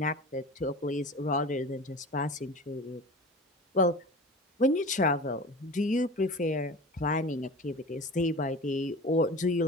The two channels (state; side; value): normal; both; correlation 0.35